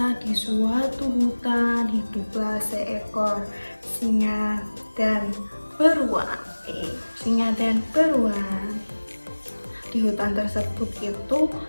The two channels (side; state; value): both; inverted; correlation -1.00